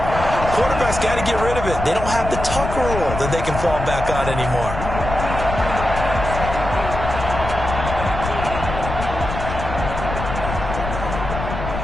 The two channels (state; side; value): noise; left; rumble, 6 dB below the sound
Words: quarterback's got to get rid of it. They don't have the Tucker rule that they can fall back on anymore.